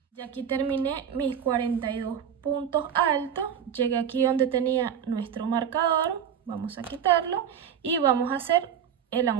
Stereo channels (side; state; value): left; quieter; 8.5 dB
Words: Y aquí terminé mis 42 puntos altos. Llegué aquí donde tenía nuestro marcador. Vamos a quitarlo y vamos a hacer el